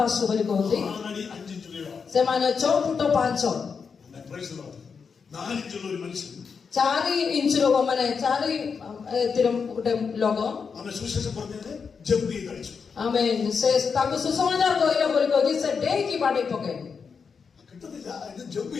ବୋଲି କହନ୍ତି. 4 അടി 5 ഇഞ്ച് ഉയരം. ସେମାନେ 6 ଫୁଟ 5. Praise the Lord. 4 ഇഞ്ചുള്ള ഒരു മനുഷ്യൻ 4 ଇଞ୍ଚର ମାନେ 4 ଏଥିର ଗୋଟେ ଲୋକ ଆମେ ସୁଶേഷം പറഞ്ഞത് ജമ്പ് ചെയ്ത് കളിച്ചു. ଆମେ ସେ ତାଙ୍କୁ ସୁସମାଚାର କହିଲା ବୋଲି କହିକି ସେ ଡେଇକି ବାଡେଇ ପକେଇଲେ. കിട്ടത്തില്ല. ഇത് ജമ്പ്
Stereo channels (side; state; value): right; quieter; 5.8 dB